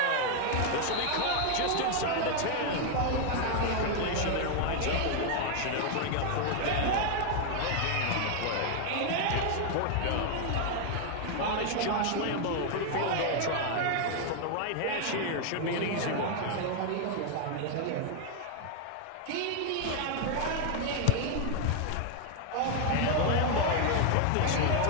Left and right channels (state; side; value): different; both; correlation 0.00